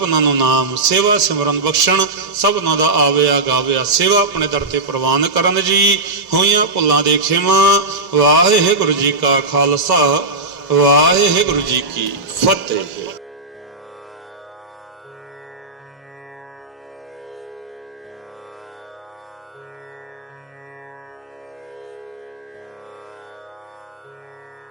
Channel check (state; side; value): quieter; left; 3.3 dB